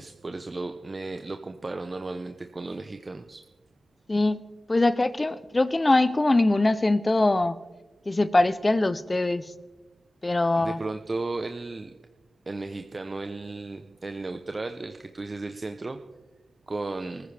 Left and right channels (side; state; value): both; normal; correlation 0.98